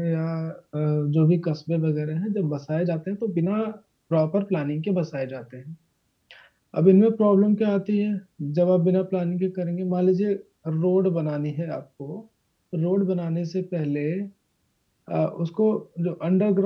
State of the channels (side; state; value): both; identical; correlation 1.00